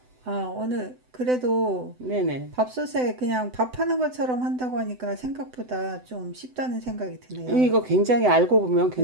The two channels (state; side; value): late; left; 7.9 ms